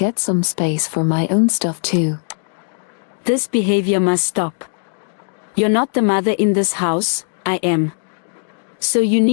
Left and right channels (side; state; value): right; silent; digital silence